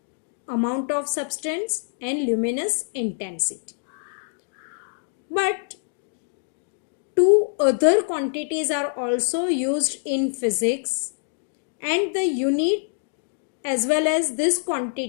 amount of substance and luminous intensity. But 2 other quantities are also used in physics and the unit as well as this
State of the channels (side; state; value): right; silent; digital silence